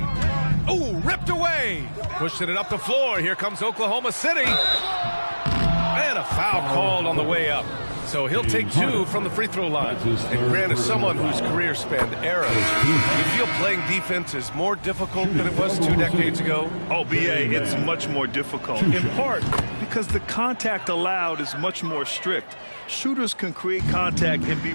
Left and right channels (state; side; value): inverted; both; correlation -1.00